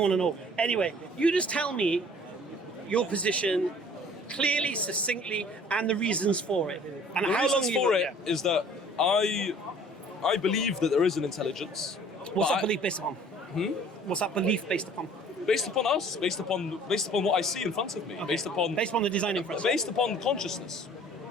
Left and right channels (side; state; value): both; normal; correlation 0.52